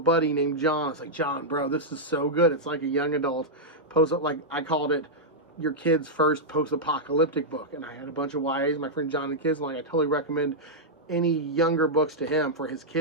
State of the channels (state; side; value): normal; both; correlation -0.06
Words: named John, I was like, John, bro, this is so good. It's like a young adult like I called it your kid's first post-apocalyptic book. And I had a bunch of YAs, my friend John and kids, and like, I totally recommend any younger books to him for his